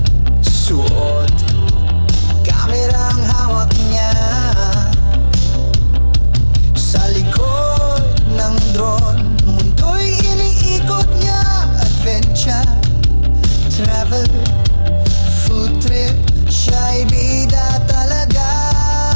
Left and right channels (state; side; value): inverted; both; correlation -1.00